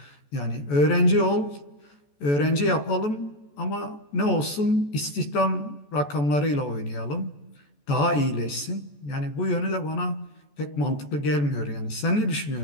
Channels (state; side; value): late; right; 14 ms